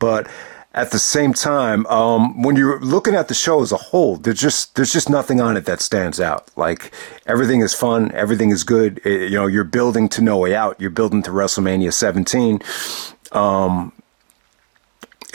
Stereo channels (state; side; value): silent; left; digital silence